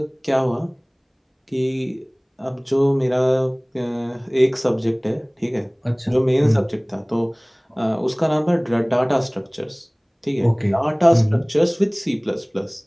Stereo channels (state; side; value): identical; both; correlation 1.00